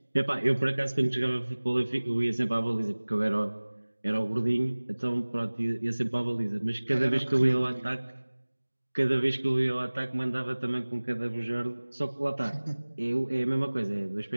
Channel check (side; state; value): both; inverted; correlation -1.00